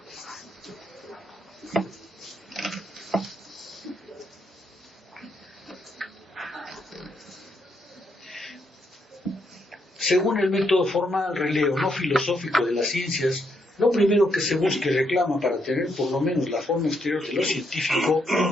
Según el método formal, releo, no filosófico de las ciencias, lo primero que se busca y reclama para tener por lo menos la forma exterior de lo científico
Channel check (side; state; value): both; normal; correlation 0.77